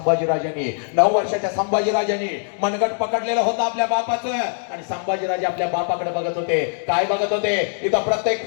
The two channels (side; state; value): right; silent; digital silence